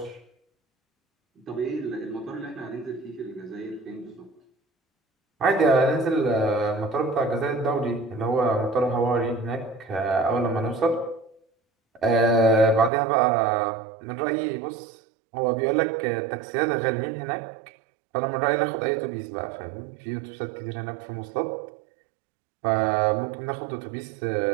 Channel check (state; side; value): drops out; left; at 12.9 s